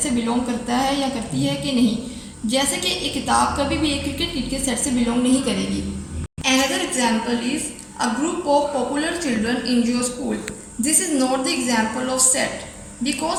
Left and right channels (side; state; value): both; identical; correlation 1.00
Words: से बिलोंग करता है या करती है कि नहीं। जैसे कि एक किताब कभी भी एक क्रिकेट किट के सेट से बिलोंग नहीं करेगी। Another example is a group of popular children in your school. This is not the example of set